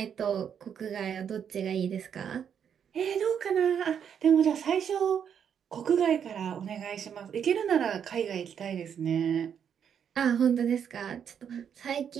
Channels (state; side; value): quieter; left; 8.1 dB